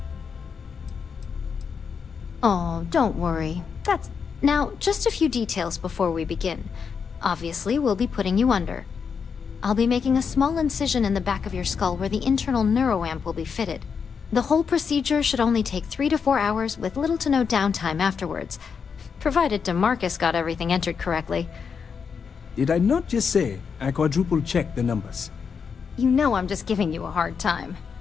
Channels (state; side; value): quieter; right; 6.2 dB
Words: Oh, don't worry. That's... Now, just a few details before we begin. Obviously, we'll be putting you under. I'll be making a small incision in the back of your skull where the internal neuroamp will be fitted. The whole procedure should only take 3 to 4 hours with little to no downtime afterwards, provided DeMarcus got everything entered correctly. Did I not just say I quadruple-checked the numbers? You know I'm just giving you a hard time.